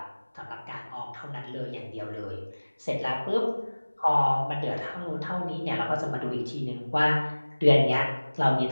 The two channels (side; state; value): both; inverted; correlation -1.00